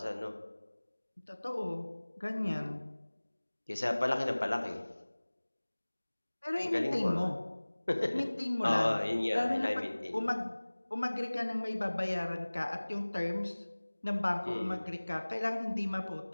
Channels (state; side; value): inverted; both; correlation -1.00